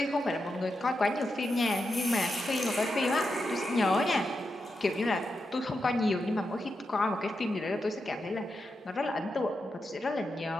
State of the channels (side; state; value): both; normal; correlation 0.87